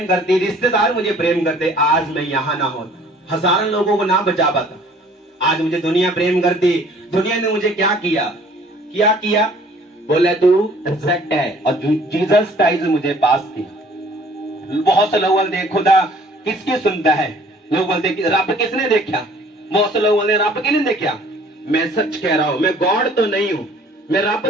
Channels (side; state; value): both; normal; correlation 0.55